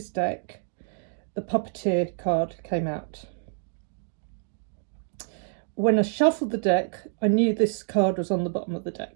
deck, the Puppeteer card came out. When I shuffled the deck, I knew this card was on the bottom of the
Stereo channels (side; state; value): left; silent; digital silence